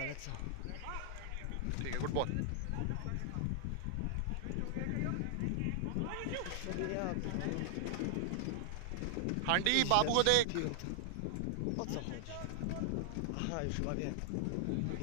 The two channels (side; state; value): both; different; correlation -0.01